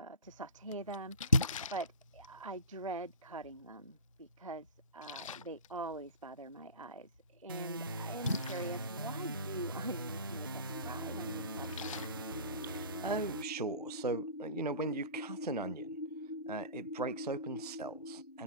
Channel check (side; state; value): both; inverted; correlation -0.36